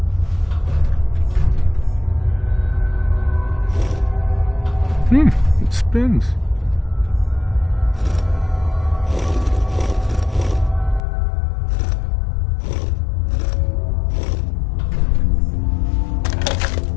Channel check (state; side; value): drops out; right; at 11.0 s